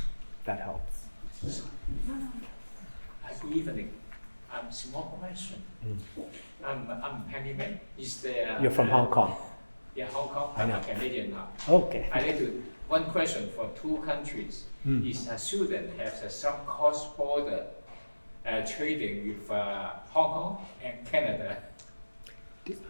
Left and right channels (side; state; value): both; inverted; correlation -1.00